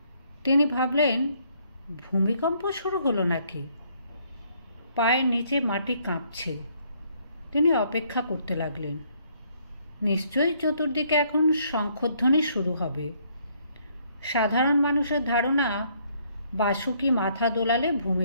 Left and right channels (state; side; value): inverted; both; correlation -0.67